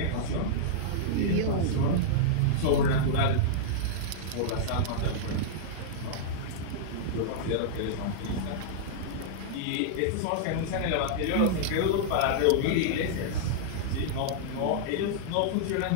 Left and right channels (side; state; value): both; different; correlation -0.02